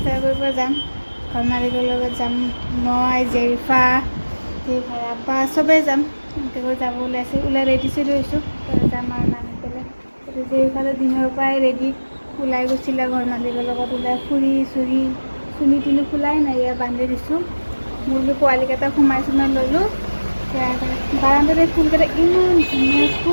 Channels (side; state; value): both; inverted; correlation -1.00